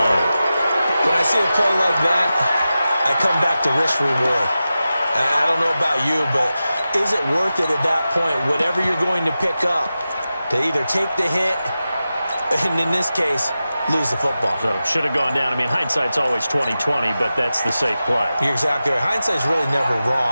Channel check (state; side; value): inverted; both; correlation -0.93